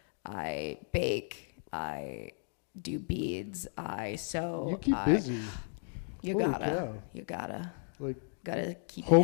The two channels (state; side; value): silent; right; 55 dB below the other